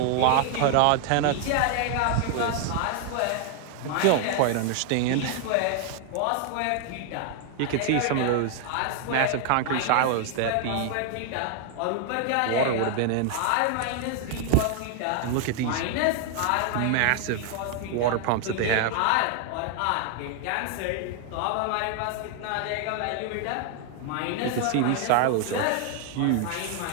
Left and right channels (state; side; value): different; both; correlation 0.00